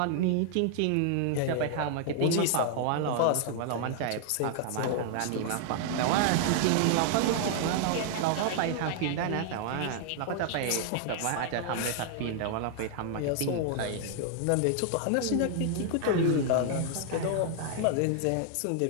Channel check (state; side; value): different; both; correlation 0.00